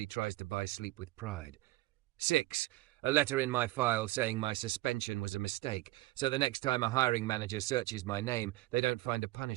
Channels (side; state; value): left; quieter; 18.9 dB